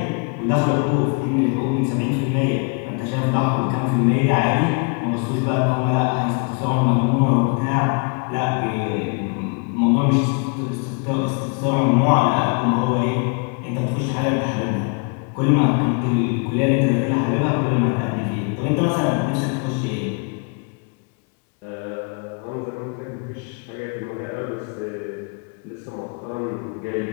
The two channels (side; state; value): right; quieter; 35.0 dB